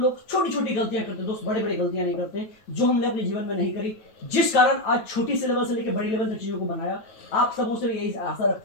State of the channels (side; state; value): right; late; 9.1 ms